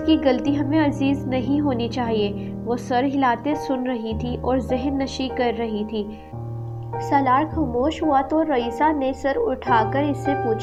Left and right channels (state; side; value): identical; both; correlation 1.00